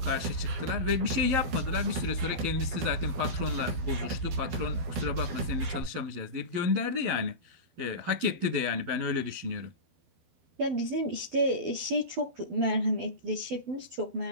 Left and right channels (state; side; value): late; left; 12 ms